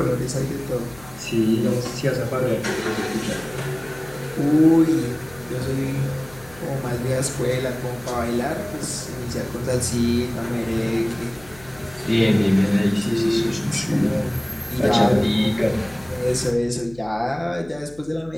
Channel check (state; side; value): noise; left; hum, 22 dB below the sound